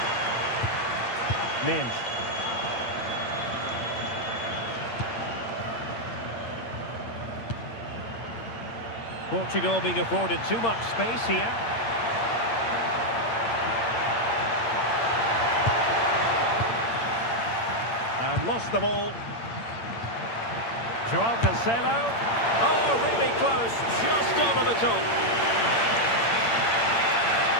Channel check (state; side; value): late; right; 8.7 ms